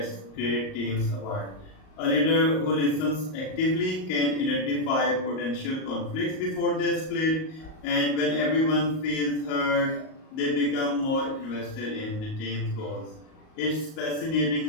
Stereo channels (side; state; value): right; late; 38 ms